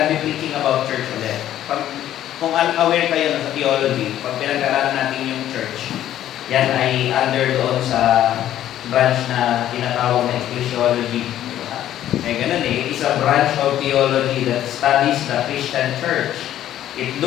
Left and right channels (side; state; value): right; quieter; 12.1 dB